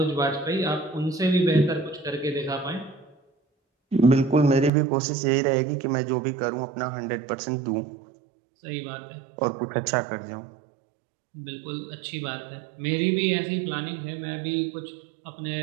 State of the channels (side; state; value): left; drops out; at 4.7 s